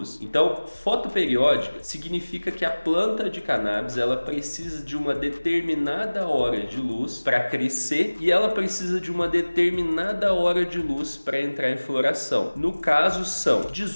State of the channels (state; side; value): inverted; both; correlation -1.00